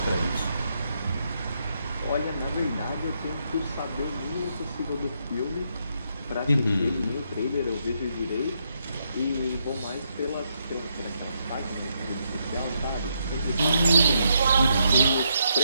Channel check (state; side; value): inverted; both; correlation -0.77